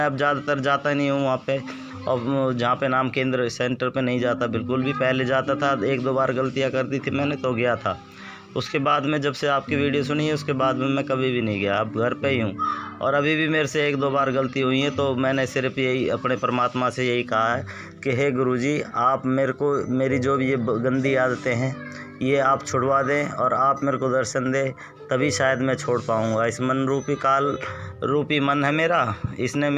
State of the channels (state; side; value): identical; both; correlation 1.00